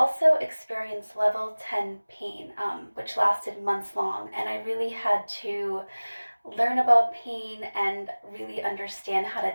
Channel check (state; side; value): inverted; both; correlation -1.00